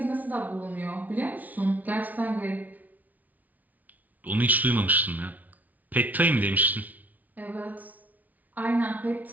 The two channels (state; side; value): late; left; 0.076 ms